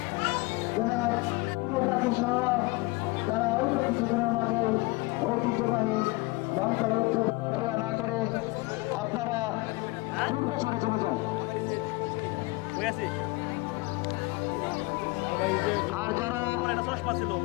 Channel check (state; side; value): quieter; right; 23.4 dB